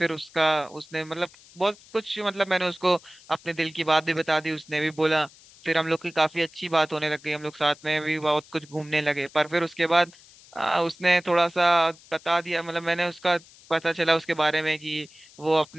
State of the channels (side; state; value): left; noise; hiss, 24 dB below the sound